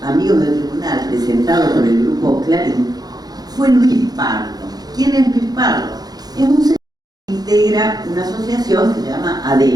amigos del tribunal presentado por el Grupo Clarín fue Luis Pardo. ¿Quién es Luis Pardo? Es un señor que integra una asociación que se llama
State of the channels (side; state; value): left; late; 0.19 ms